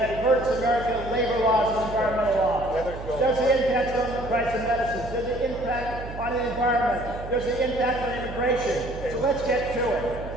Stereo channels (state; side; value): noise; right; hum, 11 dB below the sound